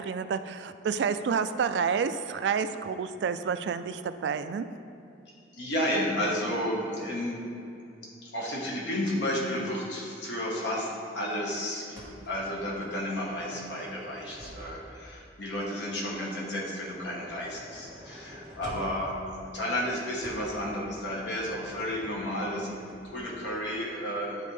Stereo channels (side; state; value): both; normal; correlation 0.14